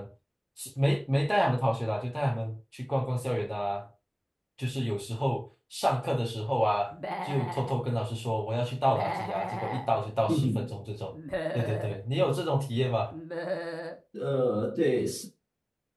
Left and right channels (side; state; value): both; identical; correlation 1.00